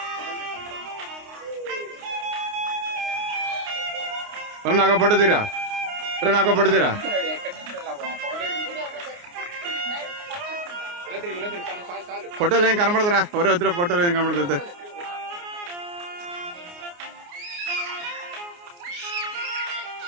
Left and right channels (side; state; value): left; late; 29 ms